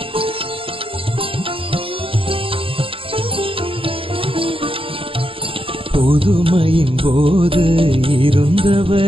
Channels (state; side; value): late; left; 0.26 ms